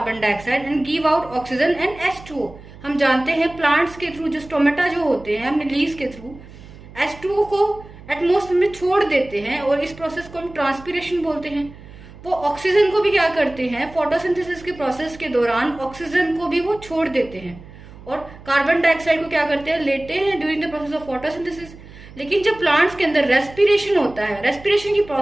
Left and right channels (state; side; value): noise; right; hum, 19 dB below the sound